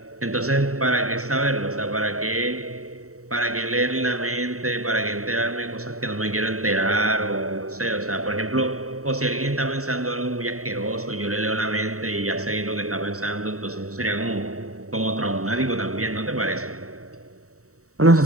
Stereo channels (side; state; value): left; late; 0.64 ms